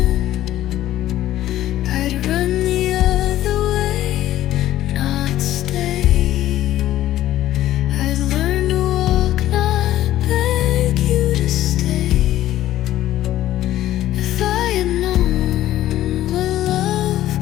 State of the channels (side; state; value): right; quieter; 13.7 dB